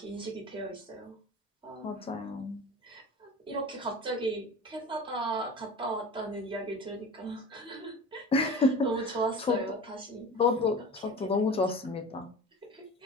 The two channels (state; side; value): normal; both; correlation 0.35